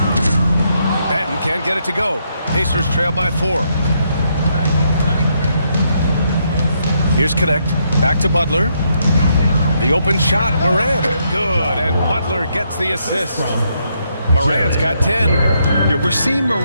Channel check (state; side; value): inverted; both; correlation -0.76